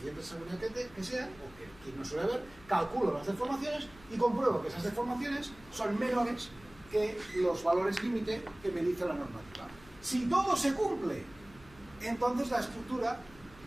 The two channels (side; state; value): left; noise; hum, 23 dB below the sound